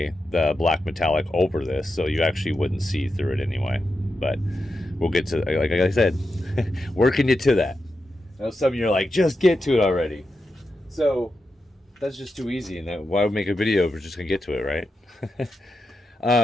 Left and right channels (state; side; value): normal; both; correlation 0.88